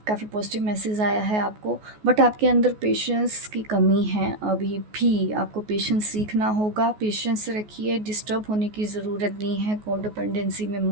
काफ़ी पॉजिटिव मैसेज आया है आपको, बट आपके अंदर पेशेंस की कमी है। अभी भी आपको पेशेंस सीखना होगा। पेशेंस रखिए, डिस्टर्ब होने की ज़रूरत नहीं है, कोडिपेंडेंसी में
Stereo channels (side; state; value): left; late; 14 ms